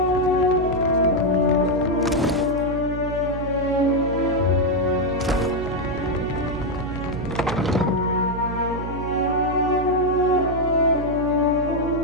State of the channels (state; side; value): noise; right; hum, 7 dB below the sound